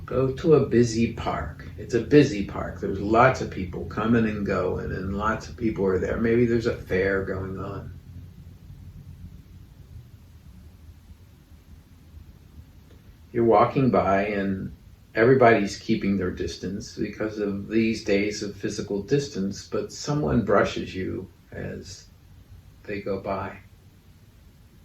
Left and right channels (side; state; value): both; identical; correlation 1.00